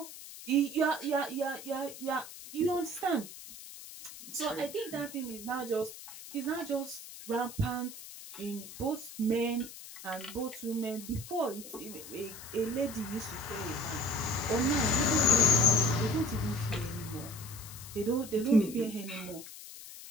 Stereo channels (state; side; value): noise; left; hiss, 14 dB below the sound